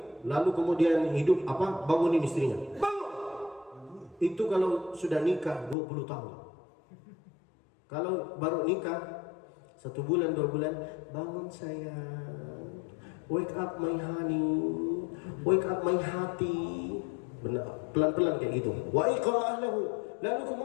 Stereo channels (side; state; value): right; drops out; at 5.8 s